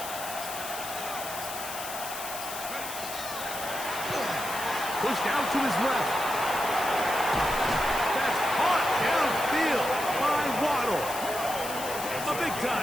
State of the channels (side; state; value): left; noise; hiss, 8 dB below the sound